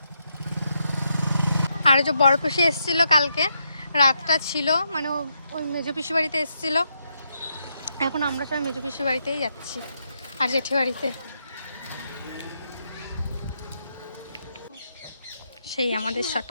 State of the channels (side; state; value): both; inverted; correlation -0.80